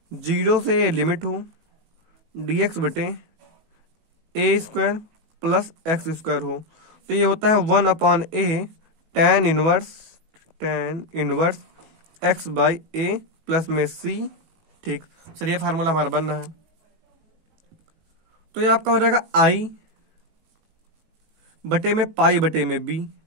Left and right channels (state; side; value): late; left; 18 ms